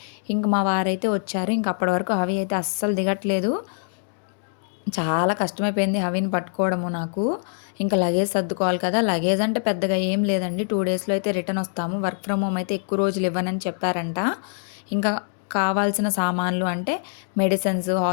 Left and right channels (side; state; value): right; silent; digital silence